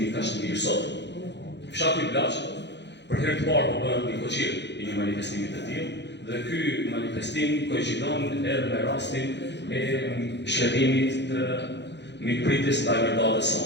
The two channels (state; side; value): late; right; 0.51 ms